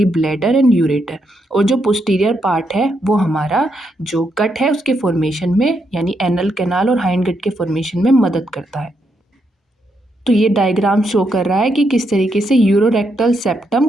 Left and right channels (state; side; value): normal; both; correlation 0.80